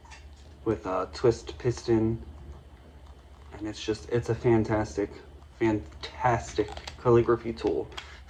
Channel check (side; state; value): both; identical; correlation 1.00